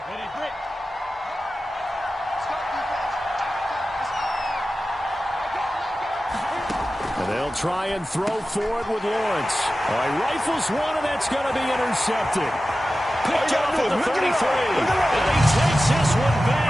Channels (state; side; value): normal; both; correlation 0.94